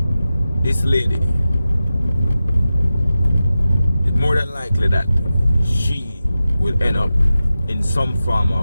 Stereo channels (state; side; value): inverted; both; correlation -0.93